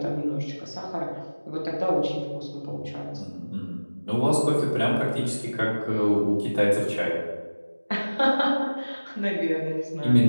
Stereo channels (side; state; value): both; inverted; correlation -1.00